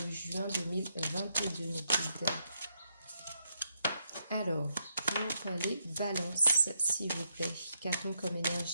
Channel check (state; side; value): inverted; both; correlation -0.80